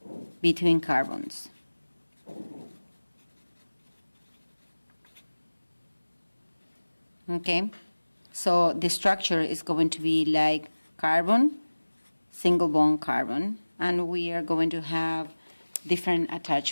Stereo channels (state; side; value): inverted; both; correlation -1.00